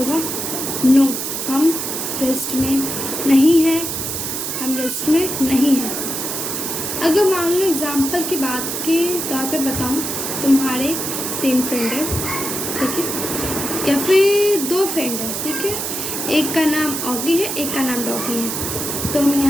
नो, हम रेस्ट में नहीं हैं, हम रेस्ट में नहीं हैं। अगर मान लो एग्जाम्पल की बात के तौर पे बताऊं, तुम्हारे 3 फ्रेंड है, ठीक है, या फिर 2 फ्रेंड है, ठीक है, एक का नाम ऑगी है, एक का नाम डॉगी है। तो हम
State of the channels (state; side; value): noise; right; hiss, 3 dB below the sound